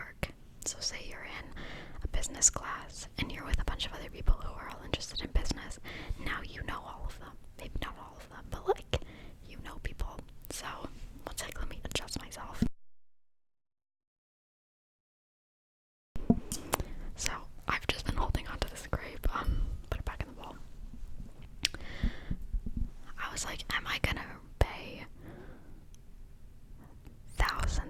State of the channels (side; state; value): both; identical; correlation 1.00